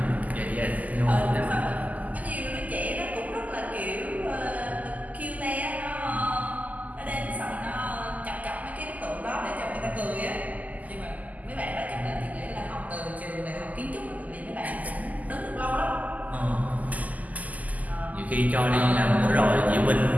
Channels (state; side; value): late; left; 0.078 ms